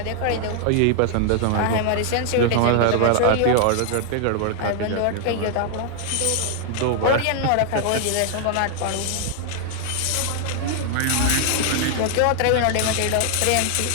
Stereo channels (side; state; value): both; different; correlation 0.00